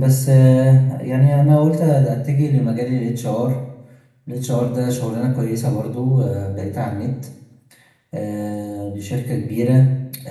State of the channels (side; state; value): both; identical; correlation 1.00